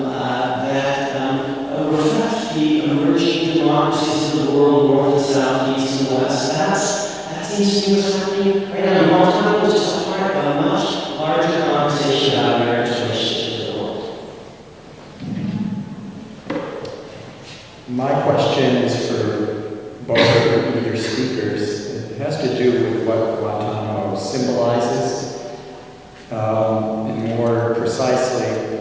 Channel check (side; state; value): both; identical; correlation 1.00